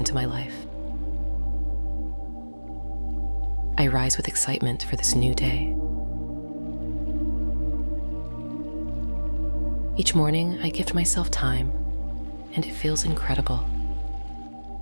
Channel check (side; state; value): both; inverted; correlation -1.00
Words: my life. I rise with excitement for this new day. Each morning, I gift myself time, and it feels incredible.